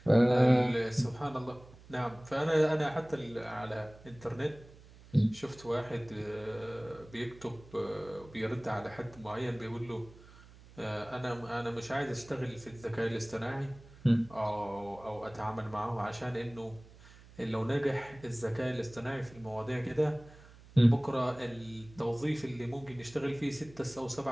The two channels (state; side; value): noise; right; hum, 22 dB below the sound